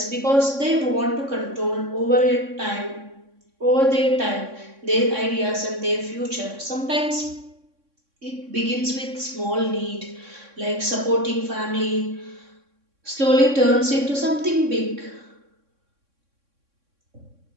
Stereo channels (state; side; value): late; left; 3.6 ms